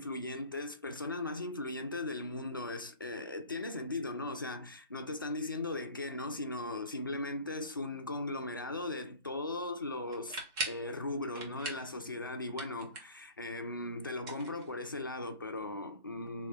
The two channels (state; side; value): inverted; both; correlation -0.44